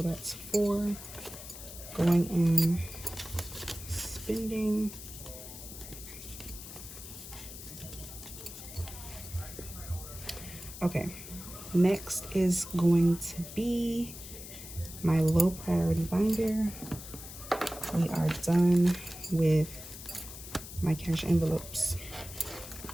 that's 4 going in spending. Okay, next is going to be my low priority binder. We are done with my cash envelopes.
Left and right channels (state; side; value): noise; left; hiss, 12 dB below the sound